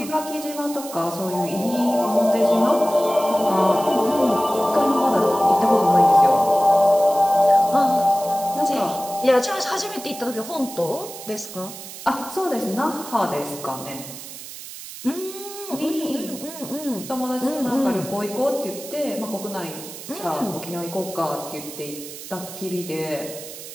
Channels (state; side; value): noise; right; hiss, 13 dB below the sound